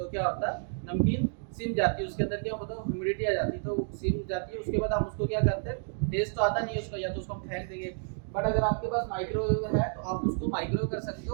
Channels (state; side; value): silent; left; digital silence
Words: क्या होता है, नमकीन सिम जाती है, उसके अंदर क्या होता है ह्यूमिडिटी आ जाती है, तो सिम जाती है। उसके बाद हम उसको क्या करते हैं, टेस्ट तो आता नहीं है उसका, या तो उसको हम फेंक देंगे। बट अगर आपके पास माइक्रोवेव है तो आप उसको माइक्रोवेव कर सकते